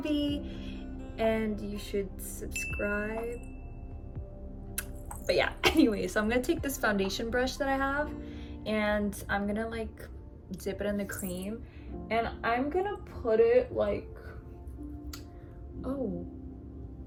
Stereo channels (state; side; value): identical; both; correlation 1.00